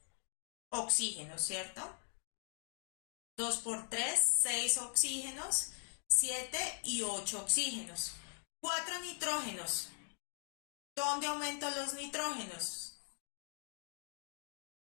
oxígenos, ¿cierto? 2 por 3, 6 oxígenos, 7 y 8 oxígenos. 4 nitrógenos. ¿Dónde aumento los nitrógenos?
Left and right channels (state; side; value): silent; right; 51 dB below the other